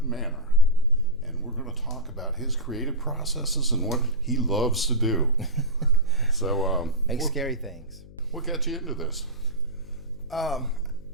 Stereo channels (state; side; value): noise; left; hum, 19 dB below the sound